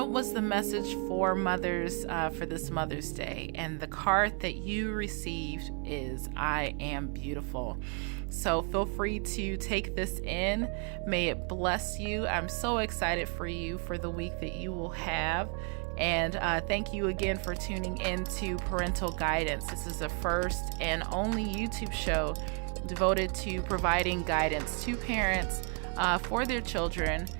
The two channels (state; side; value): quieter; left; 39.4 dB